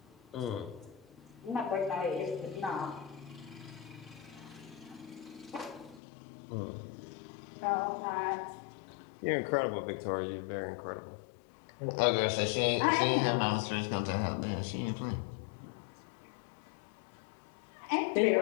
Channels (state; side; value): drops out; right; at 6.0 s